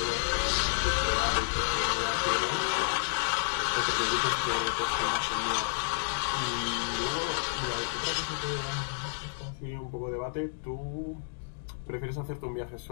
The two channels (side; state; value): right; silent; digital silence